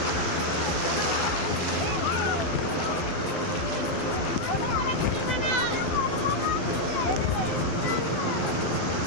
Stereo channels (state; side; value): late; right; 12 ms